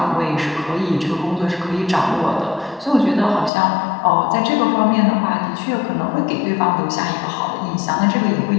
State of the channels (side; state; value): right; drops out; at 3.5 s